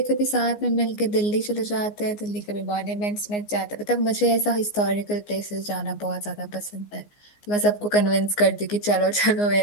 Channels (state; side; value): late; right; 14 ms